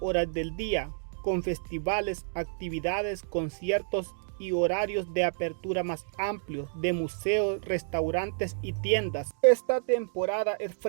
horas del día, con festivales, actividades, conciertos y horarios de apertura más amplios de museos, restaurantes y tiendas. Esta temporada es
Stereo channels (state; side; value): silent; left; digital silence